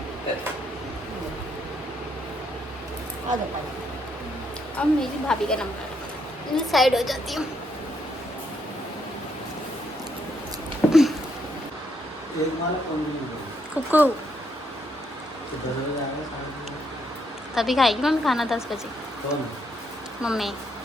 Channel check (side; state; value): both; normal; correlation 0.75